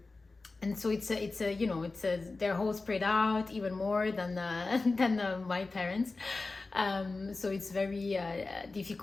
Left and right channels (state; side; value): quieter; right; 3.6 dB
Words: And so they're all spread out even more than my parents. So it's very